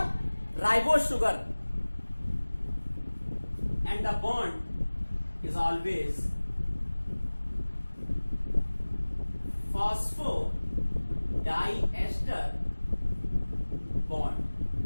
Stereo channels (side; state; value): both; inverted; correlation -1.00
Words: ribose sugar. And the bond is always phosphodiester bond.